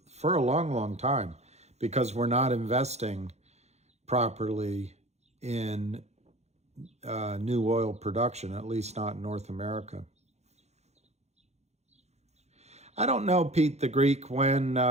a long, long time, because we're not investing properly in new oil production, at least not in North America. I don't know, Pete the Greek, when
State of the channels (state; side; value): late; left; 0.32 ms